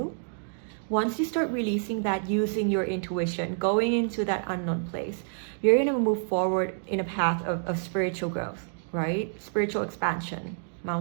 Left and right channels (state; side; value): silent; left; digital silence